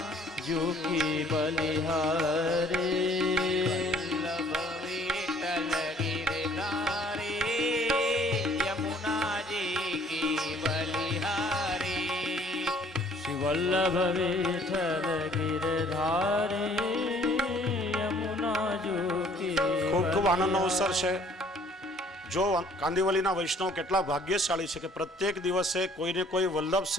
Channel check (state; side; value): normal; both; correlation 0.58